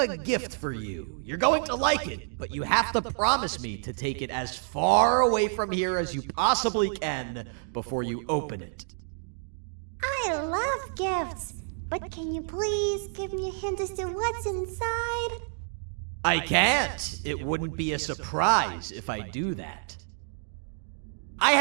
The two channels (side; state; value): left; silent; digital silence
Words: gift for you. You're going to like it, but you have to promise me to take it as far away from here as you possibly can before you open it. I love gifts, but can you please give me a hint as to what's inside? I can't. It wouldn't be a surprise if I do that. I